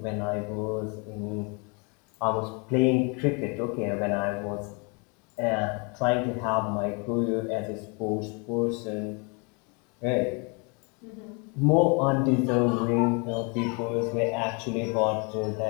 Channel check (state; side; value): quieter; right; 33.0 dB